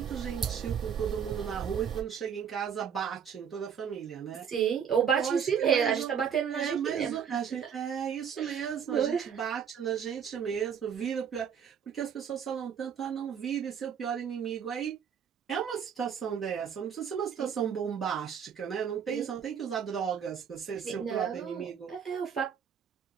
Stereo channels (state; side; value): quieter; left; 7.6 dB